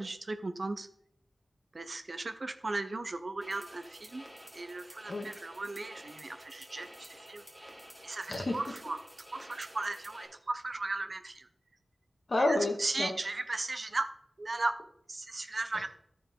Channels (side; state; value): both; normal; correlation 0.95